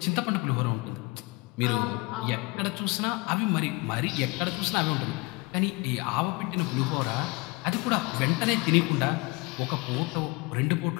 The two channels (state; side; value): quieter; right; 25.6 dB